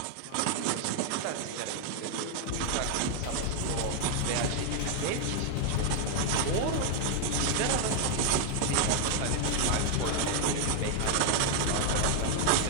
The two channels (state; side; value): different; both; correlation 0.00